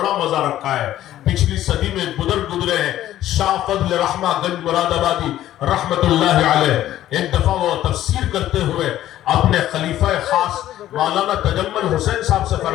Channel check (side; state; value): right; quieter; 13.1 dB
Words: मजा रखा है। पिछली सदी में बुजुर्ग गुजरे हैं, शाह फजल रहमा गंज मुरादाबादी रहमतुल्लाह अलैह। एक दफा वो तफसीर करते हुए अपने खलीफा खास मौलाना तजम्मुल हुसैन साहब से